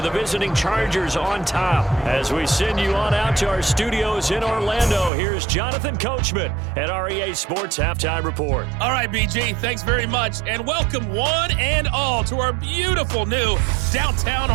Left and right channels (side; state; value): left; drops out; at 5.1 s